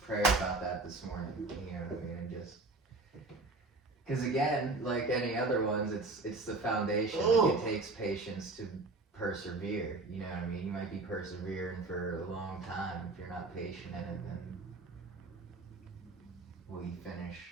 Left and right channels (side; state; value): left; quieter; 3.3 dB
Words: prayer about that this morning. You know what I mean? And just because again, like any other ones, it's the foundation. Like, Oh. it takes patience to persevere. You know what I mean? You might be persevering for a long time. If you're not patient in it, then will you finish